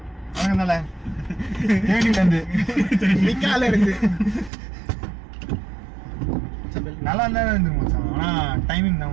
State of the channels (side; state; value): left; drops out; at 4.5 s